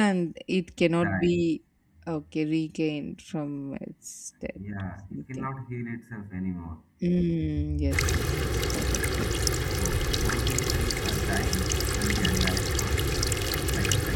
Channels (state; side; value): identical; both; correlation 1.00